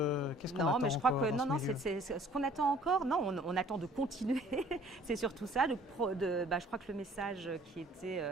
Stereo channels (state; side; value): normal; both; correlation 0.54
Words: attend? Non, mais je crois que c'est ce qu'on attend encore. Non, on attend de continuer. C'est surtout ça. Je crois que le message qui